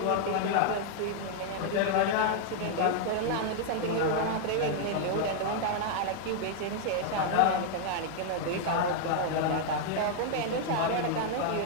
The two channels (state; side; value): different; both; correlation 0.00